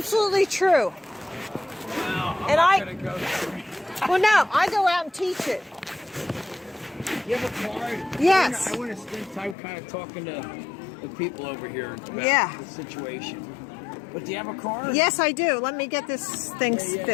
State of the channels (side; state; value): right; drops out; at 9.6 s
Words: true. Wow. I'm And not I- gonna go there. Well, no, I go out and teach it. You have a card? Yes. I want to spend time kind of talking to the people over here about Yeah. the situation. But do you have a card? Yes, I do. Let me get this thing